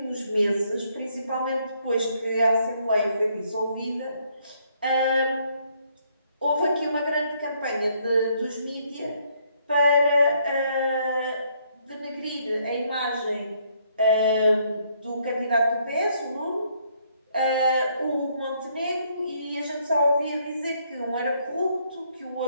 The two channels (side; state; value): both; inverted; correlation -0.70